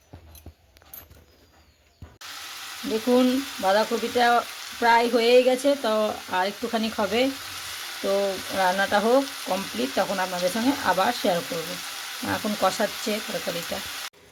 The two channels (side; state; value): both; identical; correlation 1.00